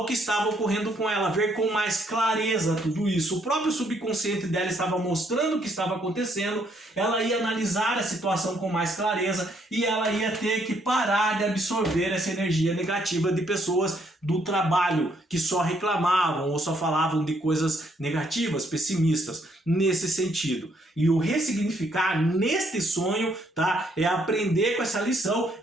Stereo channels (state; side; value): normal; both; correlation 0.70